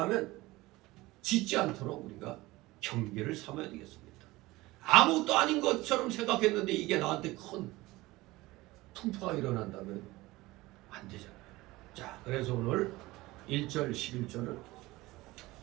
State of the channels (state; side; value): quieter; left; 19.7 dB